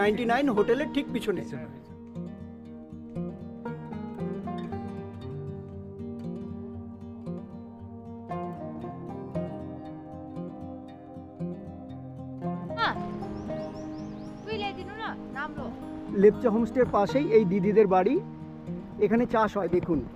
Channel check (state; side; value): identical; both; correlation 1.00